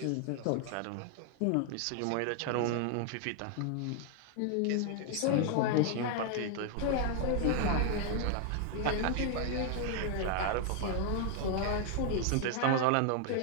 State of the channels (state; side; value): different; both; correlation 0.00